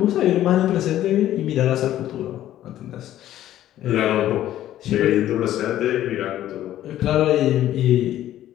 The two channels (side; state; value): right; quieter; 12.8 dB